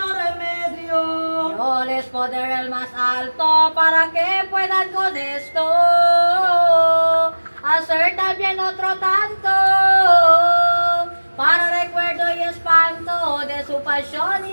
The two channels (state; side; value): inverted; both; correlation -1.00